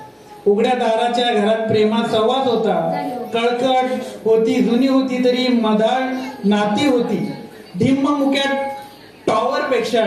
उघड्या दाराच्या घरात प्रेमात सहवास होता. कळकट होती, जुनी होती तरी मधाळ नाती होती. ढिम्म मुक्यात टॉवर पेक्षा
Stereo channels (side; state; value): both; identical; correlation 1.00